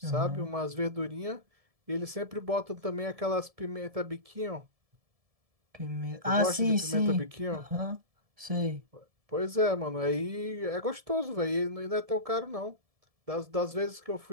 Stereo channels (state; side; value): late; left; 1.7 ms